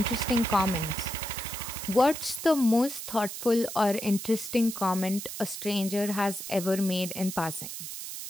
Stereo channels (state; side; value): noise; right; hiss, 8 dB below the sound